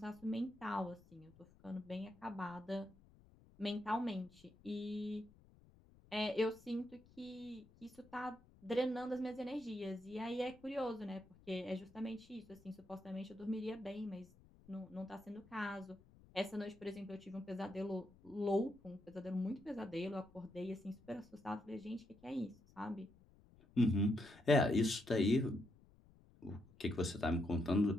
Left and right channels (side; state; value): left; noise; rumble, 25 dB below the sound